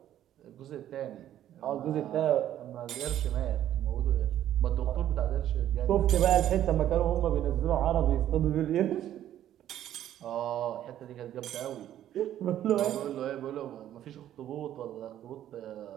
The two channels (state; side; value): quieter; left; 11.7 dB